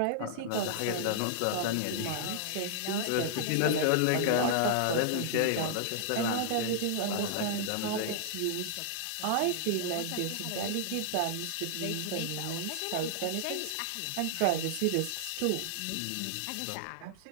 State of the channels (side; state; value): both; different; correlation -0.01